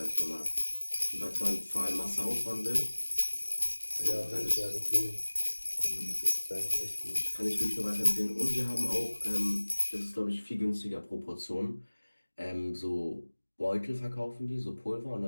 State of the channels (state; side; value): inverted; both; correlation -1.00